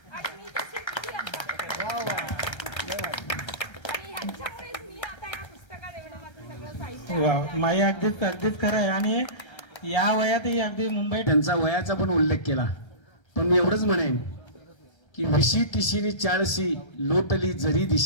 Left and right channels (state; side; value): late; right; 1.3 ms